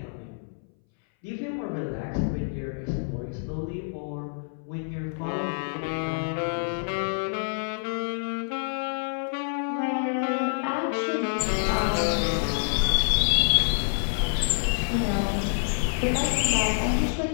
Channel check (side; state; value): right; silent; 60 dB below the other